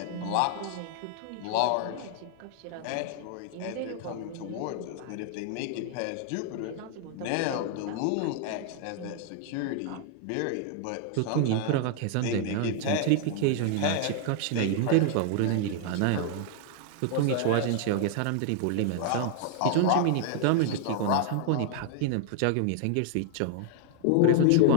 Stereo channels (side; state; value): both; different; correlation 0.00